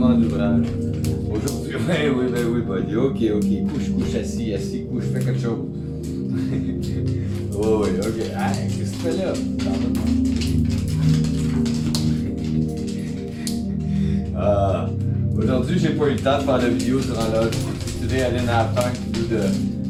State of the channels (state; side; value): identical; both; correlation 1.00